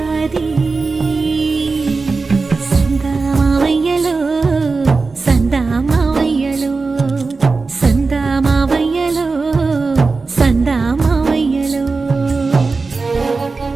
సందామావయ్యలో సందామావయ్యలో సందామావయ్యలో సందామావయ్యలో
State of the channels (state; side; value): quieter; left; 4.1 dB